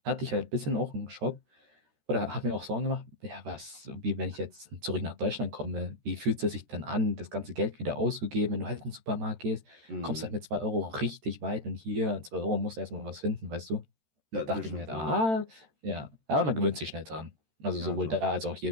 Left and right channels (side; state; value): left; late; 13 ms